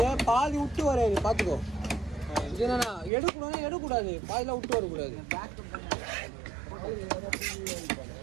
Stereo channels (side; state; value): left; drops out; at 3.1 s